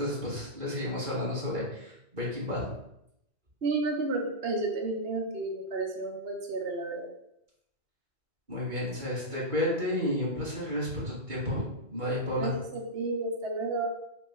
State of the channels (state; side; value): late; left; 2.2 ms